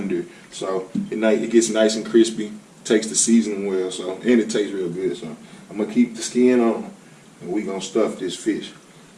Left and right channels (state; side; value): identical; both; correlation 1.00